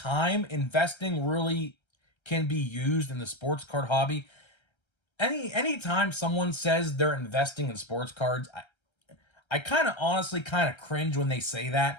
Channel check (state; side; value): late; right; 1.3 ms